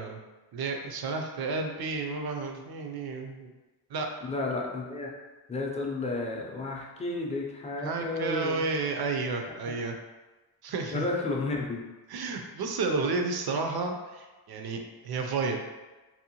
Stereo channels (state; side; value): normal; both; correlation 0.03